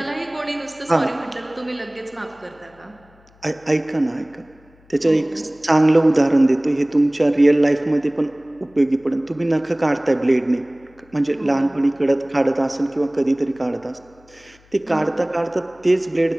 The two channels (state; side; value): noise; left; hum, 30 dB below the sound